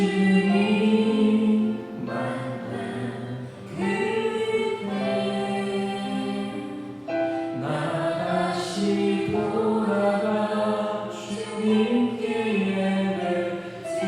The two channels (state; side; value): identical; both; correlation 1.00